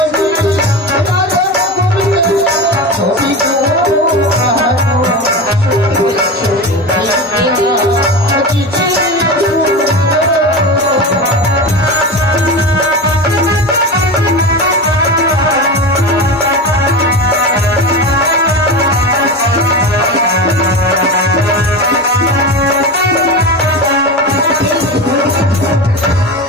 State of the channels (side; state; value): both; normal; correlation 0.24